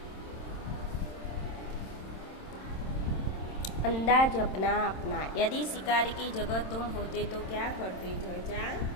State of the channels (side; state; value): right; late; 27 ms